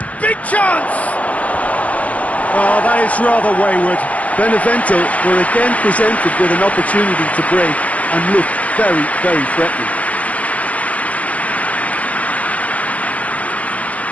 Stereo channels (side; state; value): right; late; 0.067 ms